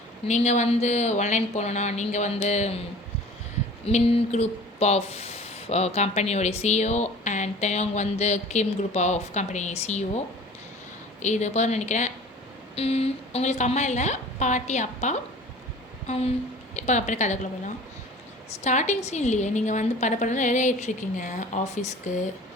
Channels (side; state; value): both; normal; correlation 0.44